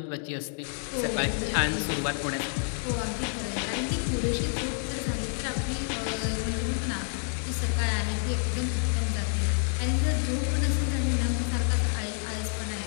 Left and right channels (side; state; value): right; silent; 57 dB below the other